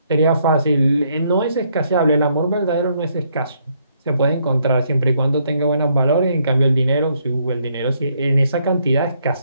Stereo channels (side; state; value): both; inverted; correlation -0.71